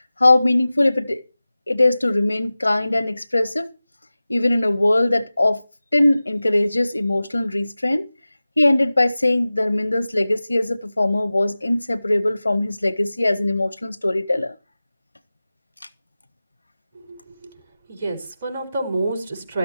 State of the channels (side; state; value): both; inverted; correlation -0.96